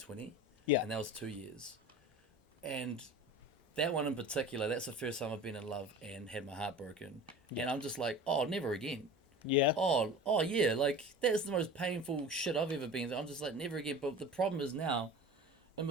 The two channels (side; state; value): both; normal; correlation 0.36